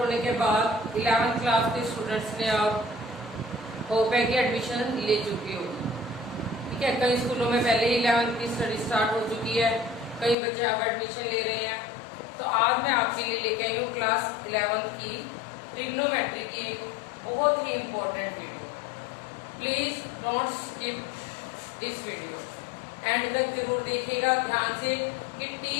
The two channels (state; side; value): drops out; right; at 10.4 s